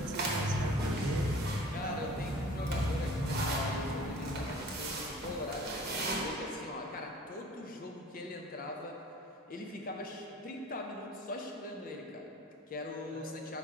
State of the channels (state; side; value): normal; both; correlation 0.47